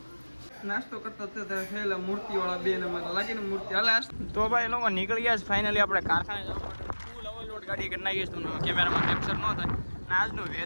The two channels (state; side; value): inverted; both; correlation -1.00